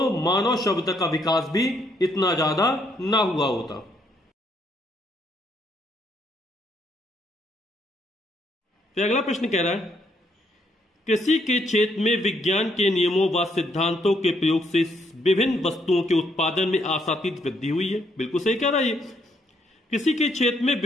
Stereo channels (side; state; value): both; normal; correlation 0.72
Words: मानव सभ्यता का विकास भी इतना ज्यादा ना हुआ होता। फिर अगला प्रश्न कह रहा है, कृषि के क्षेत्र में विज्ञान के नियमों व सिद्धांतों के प्रयोग से विभिन्न वस्तुओं के उत्पादन में आशातीत वृद्धि हुई है। बिल्कुल सही कह रहा है ये। कृषि के क्षेत्र में